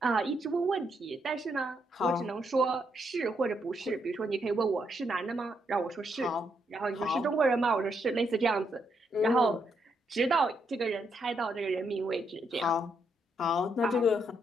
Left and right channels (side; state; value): both; normal; correlation 0.77